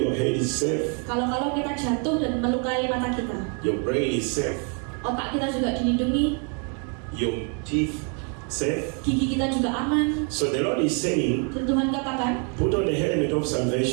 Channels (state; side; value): quieter; left; 38.9 dB